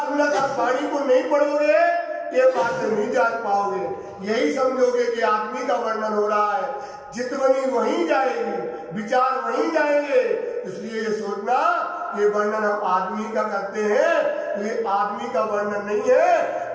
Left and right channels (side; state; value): both; identical; correlation 1.00